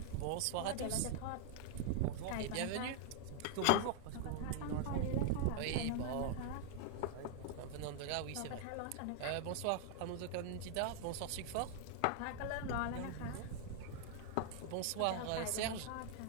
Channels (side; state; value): both; different; correlation 0.00